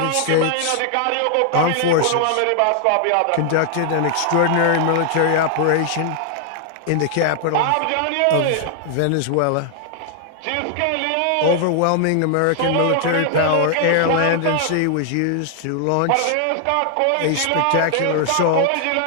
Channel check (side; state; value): both; different; correlation 0.00